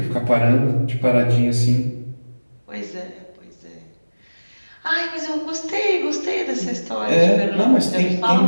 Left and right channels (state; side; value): inverted; both; correlation -1.00